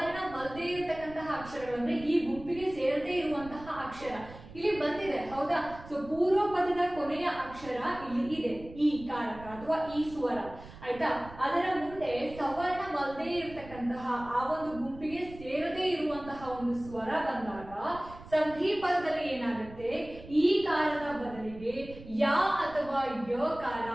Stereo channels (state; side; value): noise; right; rumble, 17 dB below the sound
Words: ಇರತಕ್ಕಂತಹ ಅಕ್ಷರಗಳು ಅಂದ್ರೆ ಈ ಗುಂಪಿಗೆ ಸೇರದೇ ಇರುವಂತಹ ಅಕ್ಷರ ಇಲ್ಲಿ ಬಂದಿದೆ, ಹೌದಾ? ಸೊ ಪೂರ್ವ ಪದದ ಕೊನೆಯ ಅಕ್ಷರ ಇಲ್ಲಿ ಇದೆ, ಈ ಕಾರಕ ಅಥವಾ ಈ ಸ್ವರ, ಆಯ್ತಾ? ಅದರ ಮುಂದೆ ಸವರ್ಣವಲ್ಲದೆ ಇರತಕ್ಕಂತಹ ಆ ಒಂದು ಗುಂಪಿಗೆ ಸೇರದೇ ಇರುವಂತಹ ಒಂದು ಸ್ವರ ಬಂದಾಗ ಸಂಧಿ ಪದದಲ್ಲಿ ಏನಾಗುತ್ತೆ? ಈ ಕಾರದ ಬದಲಿಗೆ ಯ ಅಥವಾ ಯ ಕಾರ